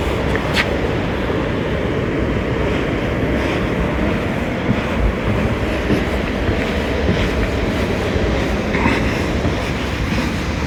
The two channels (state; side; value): identical; both; correlation 1.00